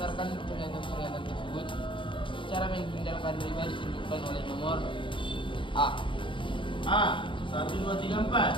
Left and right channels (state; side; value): late; right; 0.24 ms